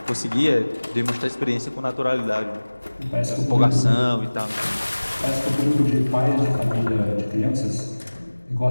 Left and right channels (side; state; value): both; inverted; correlation -1.00